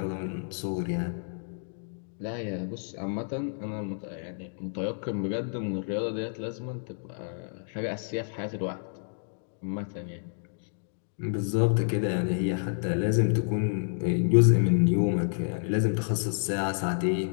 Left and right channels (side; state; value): right; silent; digital silence